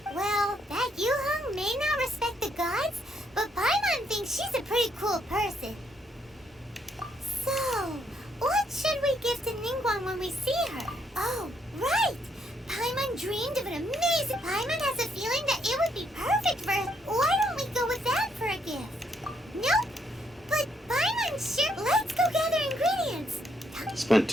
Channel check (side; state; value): both; normal; correlation 0.73